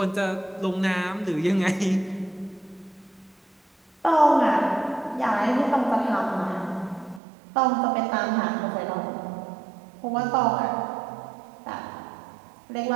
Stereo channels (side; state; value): left; drops out; at 7.2 s